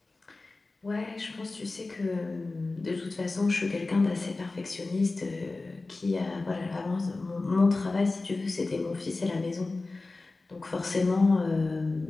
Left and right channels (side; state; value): right; quieter; 3.4 dB